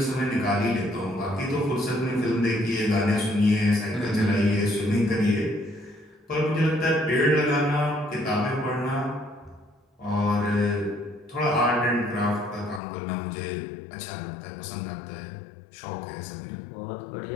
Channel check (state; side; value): drops out; right; at 12.8 s